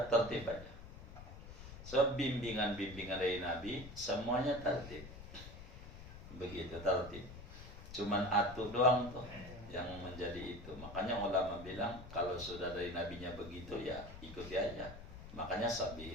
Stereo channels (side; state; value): left; noise; rumble, 13 dB below the sound